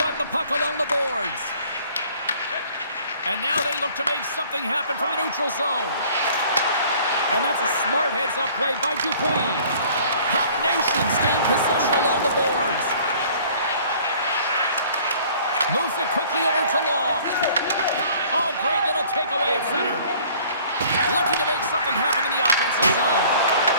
the puck along the boards. And now they look to make something happen from the neutral zone. And that's a smart heads-up play by Dupuis. Puck Nation's gained possession along the boards. Moves it quickly over to Long. Oh, great little takeaway at center. Looking to make something happen in the offensive zone.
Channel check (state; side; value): inverted; both; correlation -0.53